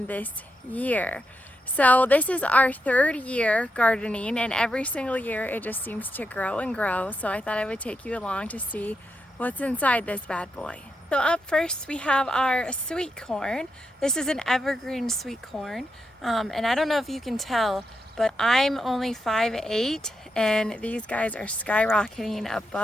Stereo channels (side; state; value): both; normal; correlation 0.84